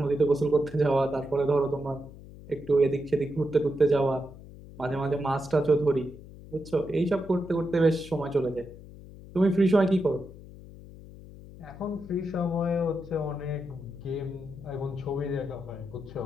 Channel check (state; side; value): noise; left; hum, 17 dB below the sound